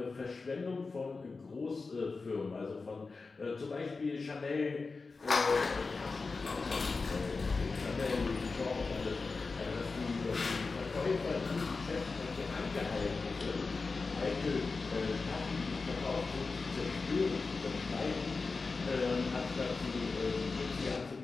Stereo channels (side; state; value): right; quieter; 4.1 dB